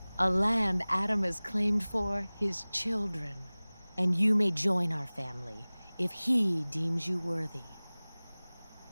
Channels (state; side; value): inverted; both; correlation -1.00